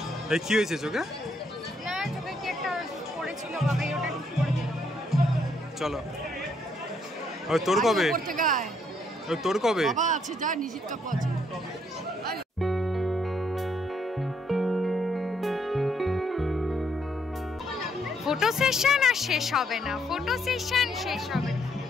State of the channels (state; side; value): normal; both; correlation 0.72